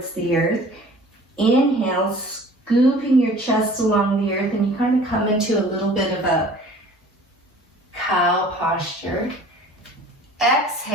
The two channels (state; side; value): normal; both; correlation 0.48